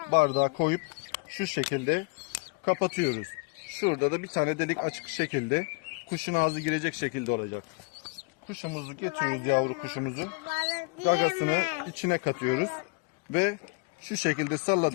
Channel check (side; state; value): right; quieter; 30.8 dB